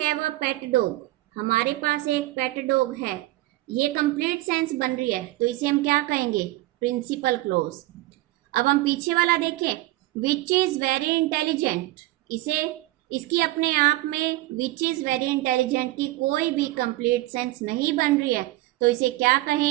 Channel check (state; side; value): quieter; left; 18.1 dB